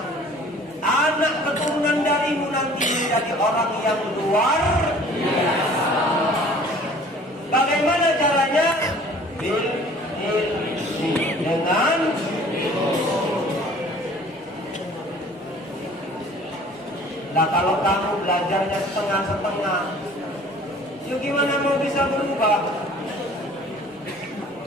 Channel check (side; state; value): both; normal; correlation 0.50